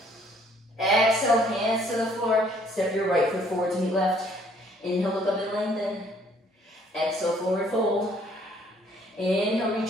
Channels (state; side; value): normal; both; correlation 0.62